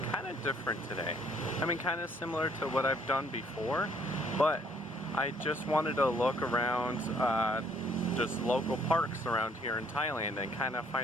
kind of different today. I mean, kind of similar to what I've done before, but I just wanted to look around just local parks around here in Thailand and kind of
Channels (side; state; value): both; normal; correlation 0.64